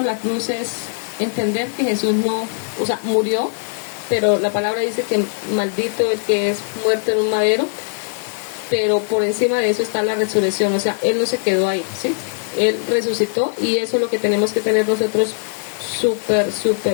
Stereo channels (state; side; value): silent; right; digital silence